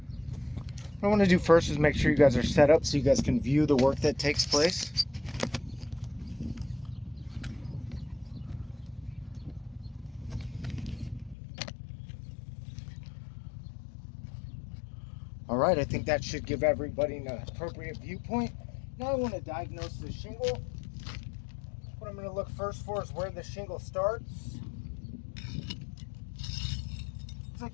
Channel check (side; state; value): right; drops out; at 11.4 s